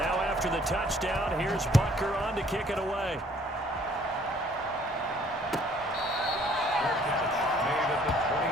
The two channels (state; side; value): normal; both; correlation 0.60